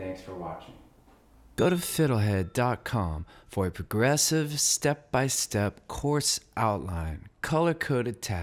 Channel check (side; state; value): both; identical; correlation 1.00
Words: for watching. Go to FiddleHed.com for a progressive, step-by-step course outline, color-coded